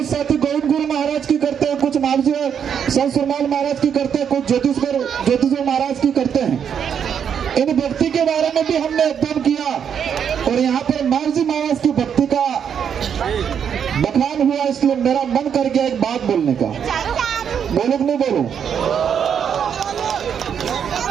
साथी गोविंद गुरु महाराज की करते हैं, कुछ मामजी संत सुरमाल महाराज की करते हैं, कुछ ज्योतिष महाराज की करते हैं। इन भक्ति के बारे में भी हमने अध्ययन किया और यहाँ पर मामजी महाराज की भक्ति का बखान हुआ, इसलिए मेरा मन कर गया एक बात बोलने का। बोलूं कि नहीं बोलूं?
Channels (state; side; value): quieter; left; 7.9 dB